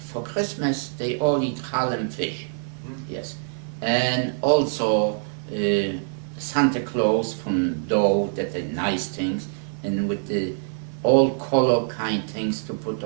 Christmas they all eat challah and fish. Yes. And also Santa Claus from dough, that are nice things, and with the all color kind things to put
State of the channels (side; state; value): left; silent; digital silence